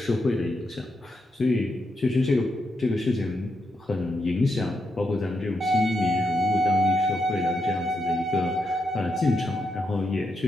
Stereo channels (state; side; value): normal; both; correlation 0.83